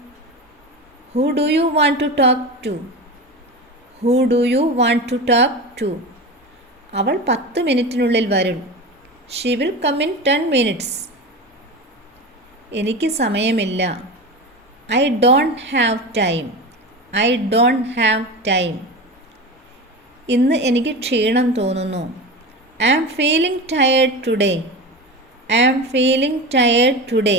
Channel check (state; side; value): normal; both; correlation 0.26